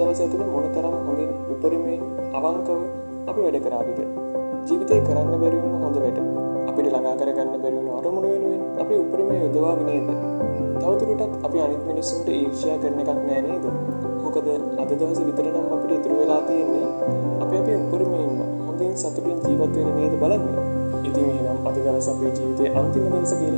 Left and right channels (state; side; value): inverted; both; correlation -1.00